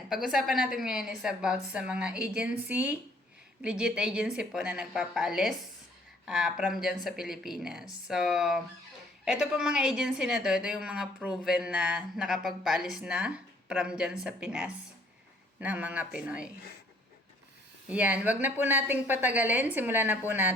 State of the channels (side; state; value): both; normal; correlation 0.61